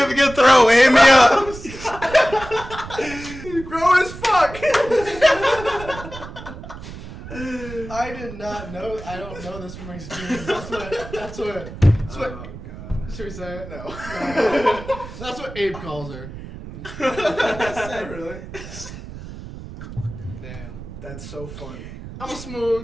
good throat. Hit me up. Grown as fuck. I did not know. I don't know this from experience. That's what. Oh god. Should we say it? No. That's what Abe calls her. Is that really? That's so funny. I'm a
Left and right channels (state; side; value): noise; right; rumble, 12 dB below the sound